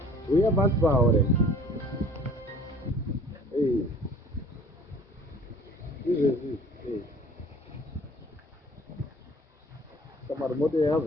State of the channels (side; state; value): both; normal; correlation 0.50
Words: We have bus power. Hey, hey. Kamar moto ya